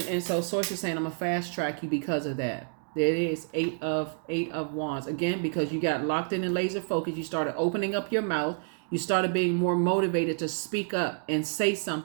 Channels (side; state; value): left; silent; 59 dB below the other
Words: so Source is saying, I'm going to fast track you because of that. There it is, eight of wands. Again, because you got locked in and laser focused, you started opening up your mouth. You started being more motivated to speak up and say